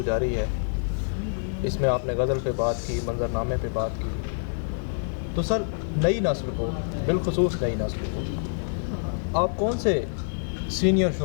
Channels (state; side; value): silent; right; digital silence